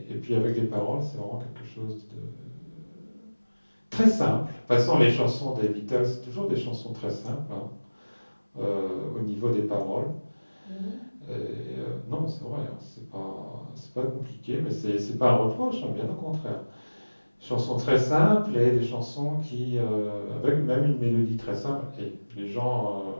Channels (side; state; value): both; inverted; correlation -1.00